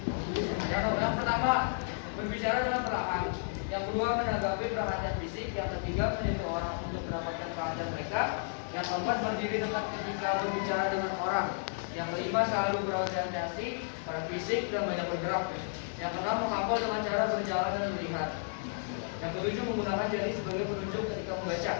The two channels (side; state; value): right; silent; digital silence